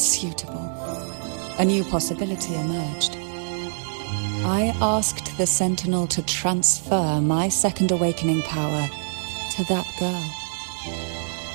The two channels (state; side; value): silent; left; digital silence